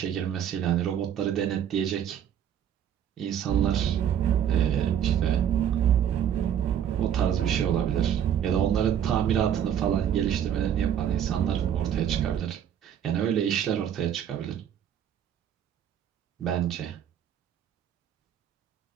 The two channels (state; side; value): quieter; left; 9.5 dB